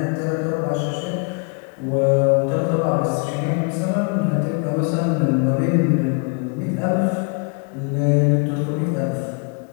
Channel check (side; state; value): right; quieter; 36.6 dB